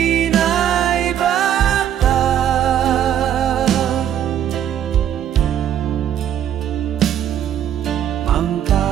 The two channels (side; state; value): left; quieter; 10.2 dB